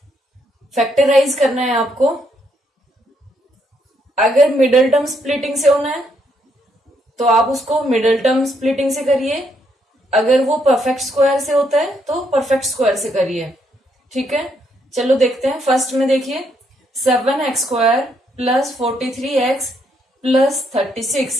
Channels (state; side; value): normal; both; correlation 0.74